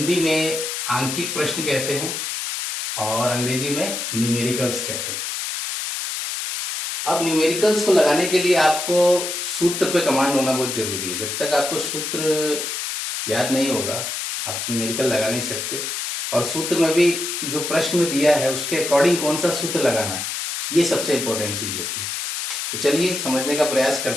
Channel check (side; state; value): left; noise; hiss, 4 dB below the sound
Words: में आंकिक प्रश्न कहते हैं और अंग्रेजी में न्यूमेरिकल्स कहते हैं। अब न्यूमेरिकल्स को लगाने के लिए आपको सूत्र पे कमांड होना बहुत जरूरी है। जब तक आपको सूत्र याद नहीं होगा आप न्यूमेरिकल लगा नहीं सकते। और सूत्र में भी कि जो प्रश्न में दिया है उसके अकॉर्डिंग कौन सा सूत्र लगाना है, ये सबसे इंपॉर्टेंट चीज होती है। तो चलिए समझने का प्रयास